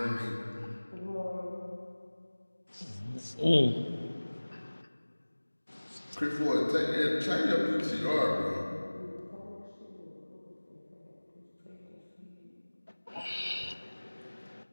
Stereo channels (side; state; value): both; inverted; correlation -1.00